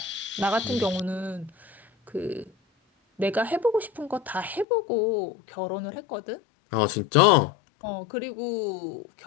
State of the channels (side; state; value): right; drops out; at 4.7 s